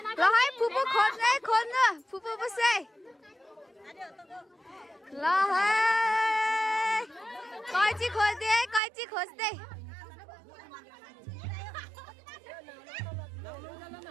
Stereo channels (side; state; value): left; drops out; at 8.8 s